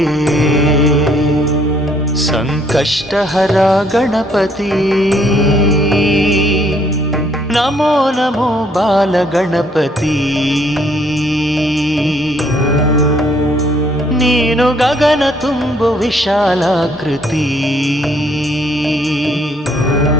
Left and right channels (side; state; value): both; normal; correlation 0.66